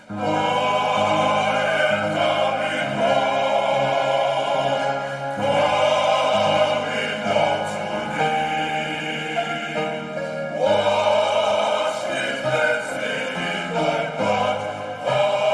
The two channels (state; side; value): identical; both; correlation 1.00